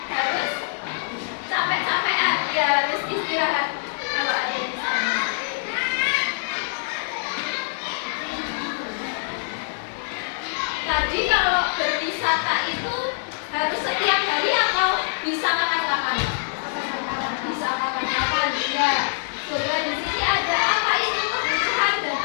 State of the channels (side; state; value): right; silent; 62 dB below the other